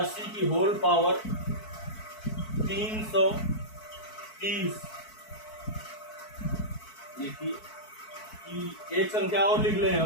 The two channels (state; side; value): late; right; 4.6 ms